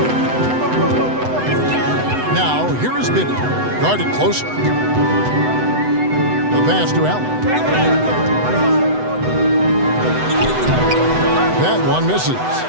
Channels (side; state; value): left; late; 8.0 ms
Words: Now, here is Bibby. Guarded closely. The pass to Allen. That one misses.